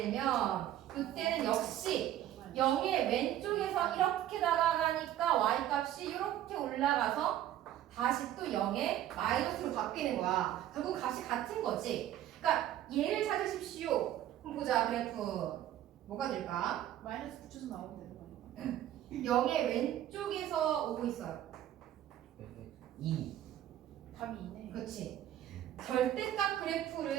이때는 역시 0의 왼쪽에서 이렇게 다가가니까 y 값이 이렇게 올라가서 다시 또 0의 마이너스로 바뀌는 거야. 결국 값이 같은 거지. 그러니까 얘를 찾으십시오. 그럼 보자 그래프. 뭐가 될까? 마이너스 붙여서 나오면 되는 거니까. 0의 왼쪽에서 오고 있어요. 2. 답이 2네. 그렇지. 절대값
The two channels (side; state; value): left; quieter; 12.4 dB